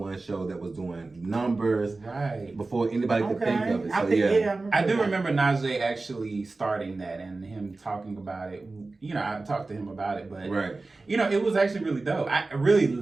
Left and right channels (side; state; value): left; quieter; 3.5 dB